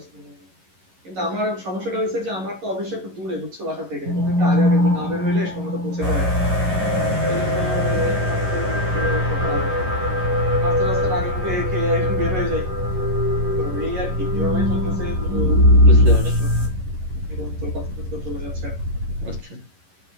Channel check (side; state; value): left; late; 11 ms